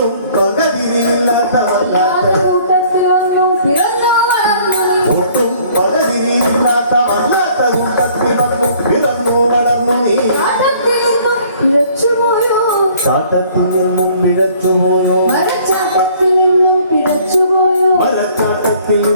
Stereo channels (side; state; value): both; inverted; correlation -0.56